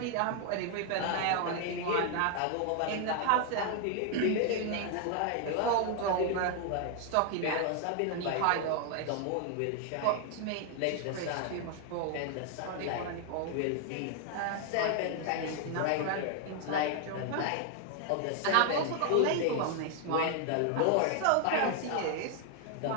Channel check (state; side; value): different; both; correlation 0.00